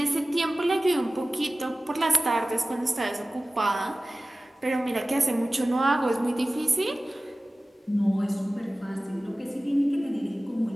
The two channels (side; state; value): both; normal; correlation 0.97